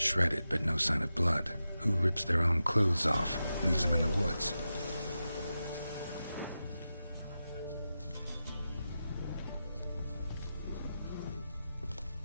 but no sign of blood. Who rips their own clothes off, leaves them in the woods?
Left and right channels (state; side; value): inverted; both; correlation -0.91